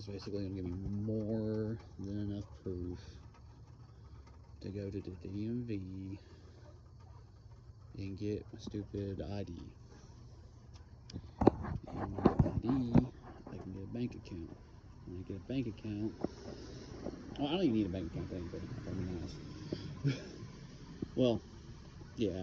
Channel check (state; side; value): identical; both; correlation 1.00